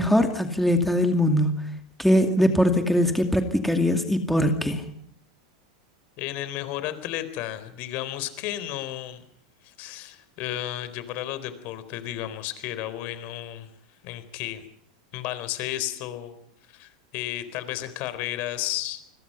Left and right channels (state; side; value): normal; both; correlation 0.59